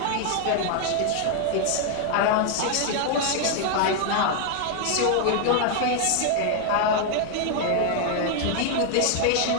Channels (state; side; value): different; both; correlation 0.00